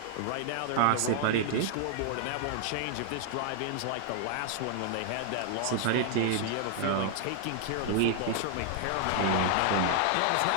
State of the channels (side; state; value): both; different; correlation 0.00